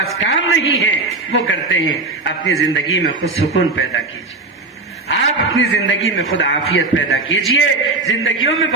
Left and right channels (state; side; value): quieter; left; 3.5 dB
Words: کام نہیں ہے وہ کرتے ہیں. اپنی زندگی میں خود سکون پیدا کیجیے, آپ اپنی زندگی میں خود عافیت پیدا کیجیے. زندگیوں میں